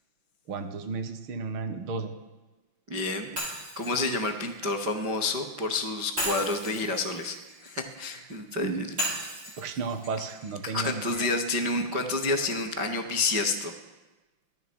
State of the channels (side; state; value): left; late; 5.9 ms